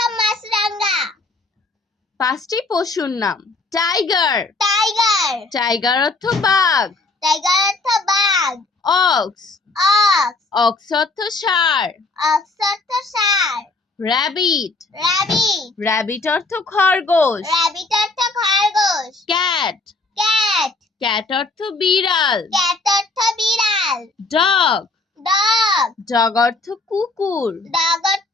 মাছরাঙা। 5টি পশুর নাম। টাইগার। টাইগার। টাইগার অর্থ বাঘ। টাইগার অর্থ বাঘ। অক্স। অক্স। অক্স অর্থ ষাঁড়। অক্স অর্থ ষাঁড়। র্যাবিট। র্যাবিট। র্যাবিট অর্থ খরগোশ। র্যাবিট অর্থ খরগোশ। ক্যাট। ক্যাট। ক্যাট অর্থ বিড়াল। ক্যাট অর্থ বিড়াল। ডগ। ডগ। ডগ অর্থ কুকুর। ডগ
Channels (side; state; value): right; quieter; 3.4 dB